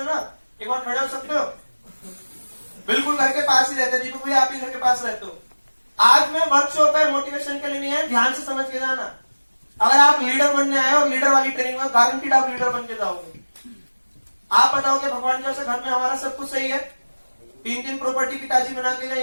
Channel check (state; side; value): inverted; both; correlation -1.00